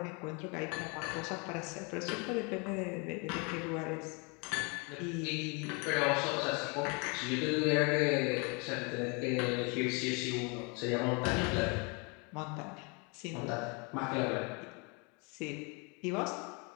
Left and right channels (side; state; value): right; quieter; 31.8 dB